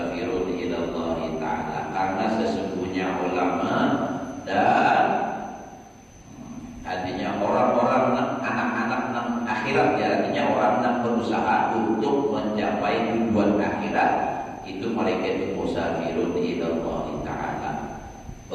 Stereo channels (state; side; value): identical; both; correlation 1.00